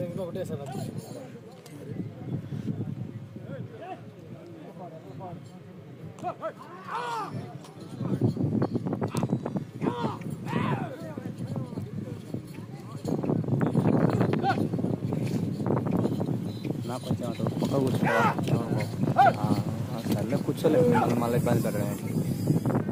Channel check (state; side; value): identical; both; correlation 1.00